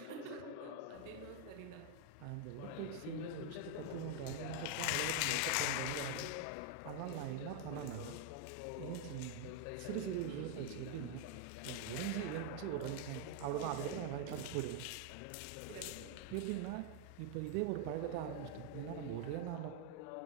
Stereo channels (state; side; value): different; both; correlation 0.00